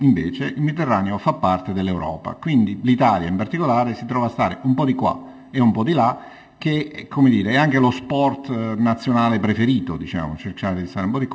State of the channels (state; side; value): identical; both; correlation 1.00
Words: il Mediterraneo fa parte dell'Europa, quindi l'Italia in particolare si trova a stare un po' di qua e un po' di là, che come dire, è anche lo sport nazionale preferito, diciamo, cercare di stare un po' di